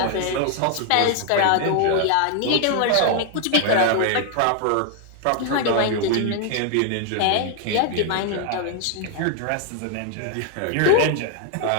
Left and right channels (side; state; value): both; different; correlation 0.00